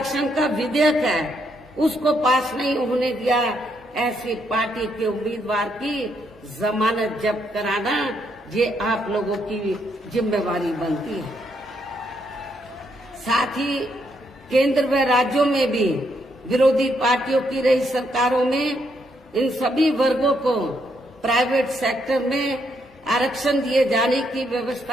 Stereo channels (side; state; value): both; normal; correlation 0.75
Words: का विधेयक है उसको पास नहीं होने दिया, ऐसी पार्टी के उम्मीदवार की जमानत जब्त कराना ये आप लोगों की जिम्मेवारी बनती है। साथ ही केंद्र व राज्यों में भी विरोधी पार्टियों की रही सरकारों में इन सभी वर्गों को प्राइवेट सेक्टर में आरक्षण दिए जाने की